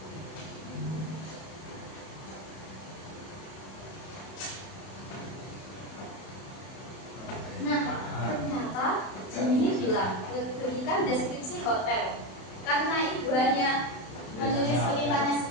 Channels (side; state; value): right; late; 31 ms